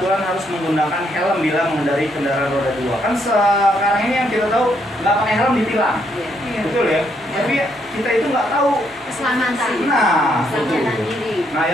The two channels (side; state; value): both; normal; correlation 0.74